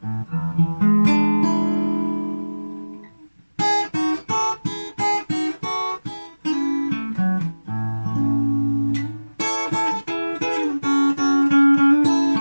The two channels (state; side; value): inverted; both; correlation -1.00